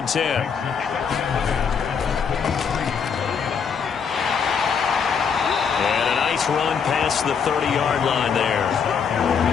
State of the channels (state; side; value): quieter; right; 6.5 dB